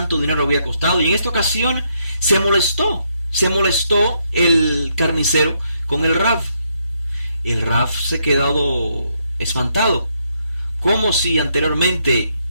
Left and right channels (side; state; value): both; inverted; correlation -0.76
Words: dinero había costado, y en esta ocasión se molestó el carnicero con el Rab. El Rab se quedó espantado. ¿Cómo si anteriormente